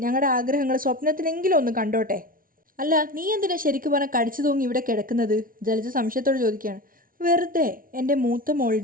ഞങ്ങളുടെ ആഗ്രഹങ്ങൾ സ്വപ്നത്തിലെങ്കിലും ഒന്ന് കണ്ടോട്ടെ. അല്ല നീ എന്തിനാ ശരിക്കും പറഞ്ഞാൽ കടിച്ചു തൂങ്ങി ഇവിടെ കിടക്കുന്നത്? ജലജ സംശയത്തോട് ചോദിക്കുകയാണ്. വെറുതെ എൻ്റെ മൂത്ത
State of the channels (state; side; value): late; left; 0.41 ms